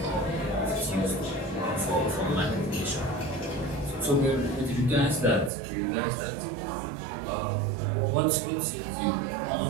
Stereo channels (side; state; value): left; drops out; at 5.5 s